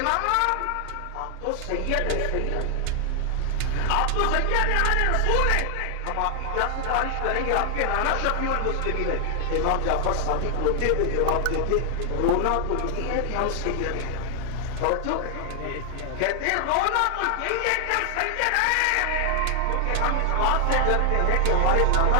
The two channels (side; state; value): both; different; correlation 0.00